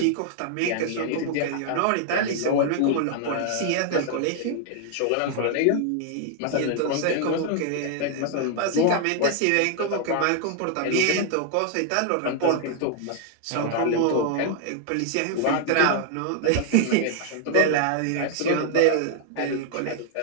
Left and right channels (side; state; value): both; different; correlation 0.00